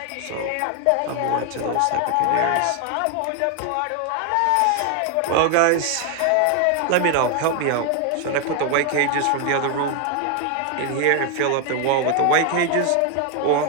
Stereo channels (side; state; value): both; different; correlation 0.00